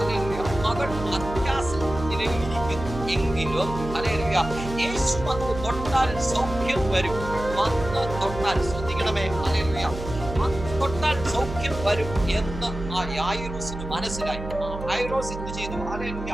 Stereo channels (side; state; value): right; noise; hum, 9 dB below the sound